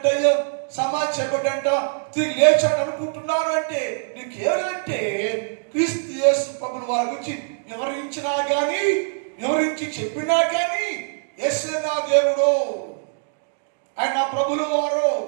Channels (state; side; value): silent; left; digital silence